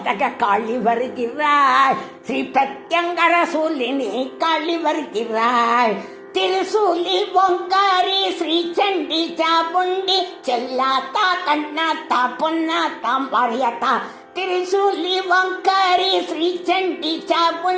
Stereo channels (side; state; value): both; identical; correlation 1.00